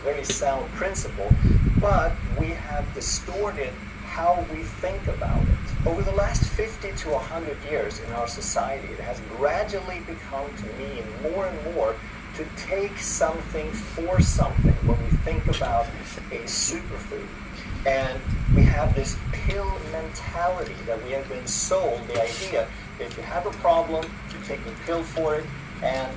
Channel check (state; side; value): identical; both; correlation 1.00